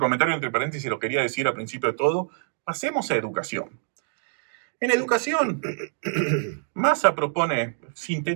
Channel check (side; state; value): left; silent; digital silence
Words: entre paréntesis, lo quería decir al principio de todo, pasemos a educación. En educación, Massa propone